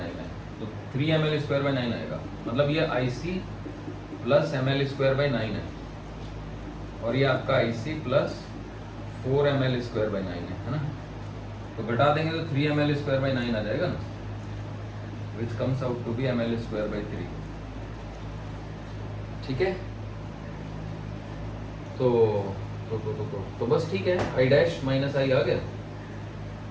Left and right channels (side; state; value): both; identical; correlation 1.00